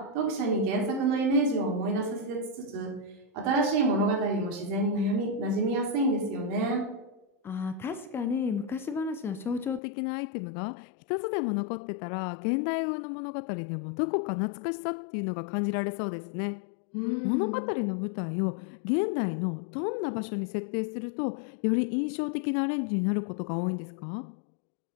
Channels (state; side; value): drops out; right; at 9.8 s